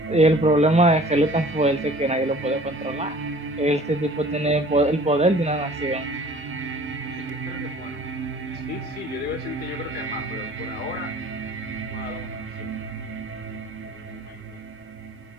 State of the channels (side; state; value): both; normal; correlation 0.49